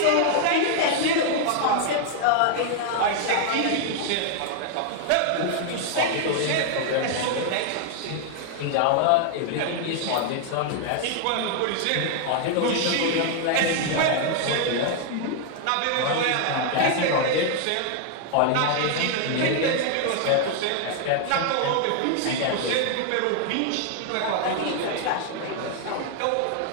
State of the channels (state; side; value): different; both; correlation 0.00